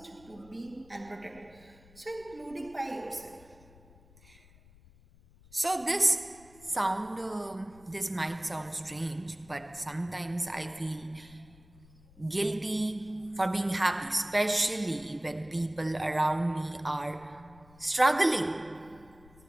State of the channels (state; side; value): noise; left; rumble, 24 dB below the sound